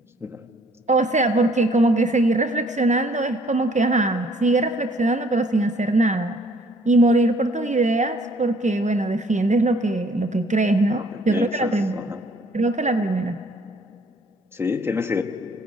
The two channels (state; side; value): normal; both; correlation 0.60